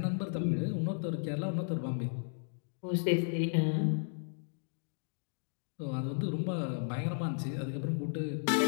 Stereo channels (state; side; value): silent; right; digital silence